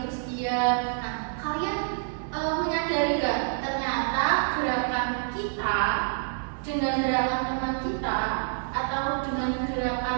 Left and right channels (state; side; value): silent; left; 60 dB below the other